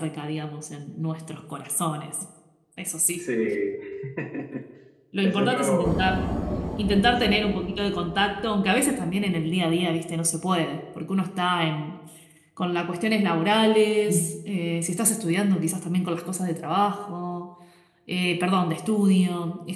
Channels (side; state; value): both; identical; correlation 1.00